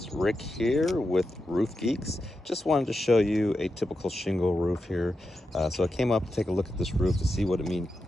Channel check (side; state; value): both; normal; correlation 0.88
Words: Rick here with Roof Geeks. Just wanted to show you a typical shingle roof here. So I came up to take a look at this roof to see what it